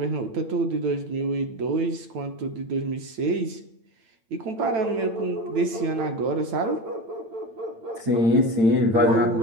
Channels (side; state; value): left; late; 8.9 ms